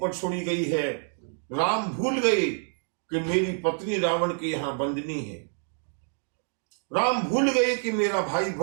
छोड़ी गई है, राम भूल गए कि मेरी पत्नी रावण के यहां बंदनी है। राम भूल गए कि मेरा भाई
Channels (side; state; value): left; silent; 60 dB below the other